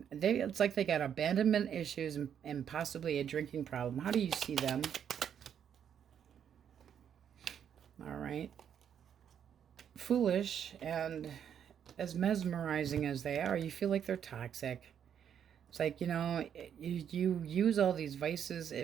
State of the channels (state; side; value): quieter; left; 8.6 dB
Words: it's like they got abandonment issues and possibly a drinking problem. How do you see them? All right. Foolish, and as mesmerizing as they are, you feel like they're toxic. It's like, you know, you use all these vices.